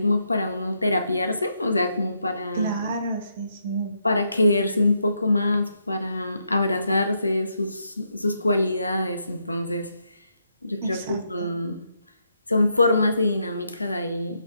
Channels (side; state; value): both; inverted; correlation -0.79